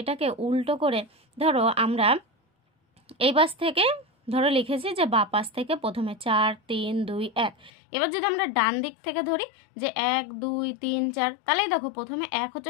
উল্টো করে ধরো, আমরা এই পাশ থেকে ধরো লিখেছি যে বা পাশ থেকে প্রথমে 4 3 2 1। এবার যদি আমরা ডান দিক থেকে ধরি যে 1 2 3 4, তাহলেই দেখো প্রথমে 1 হচ্ছে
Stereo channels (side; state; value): right; drops out; at 7.7 s